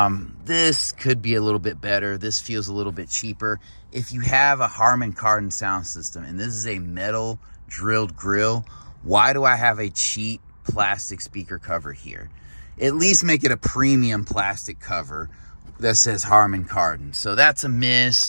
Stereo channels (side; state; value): both; inverted; correlation -1.00